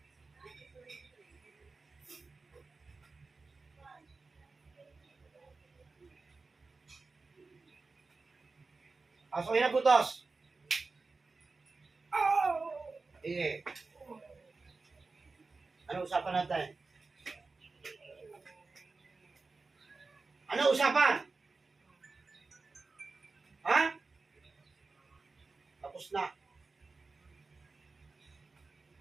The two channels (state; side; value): quieter; left; 3.9 dB